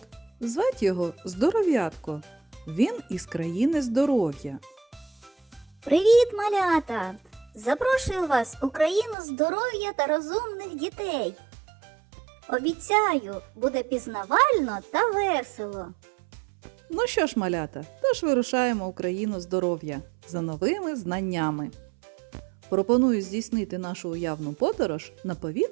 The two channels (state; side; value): drops out; left; at 9.2 s